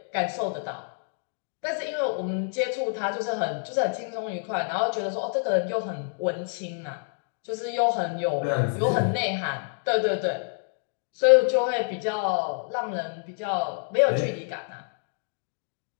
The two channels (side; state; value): right; silent; 60 dB below the other